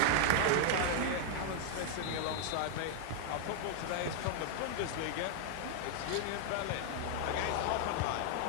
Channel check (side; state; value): both; different; correlation 0.00